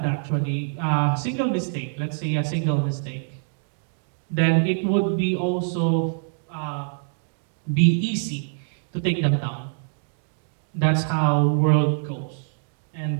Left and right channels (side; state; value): left; silent; digital silence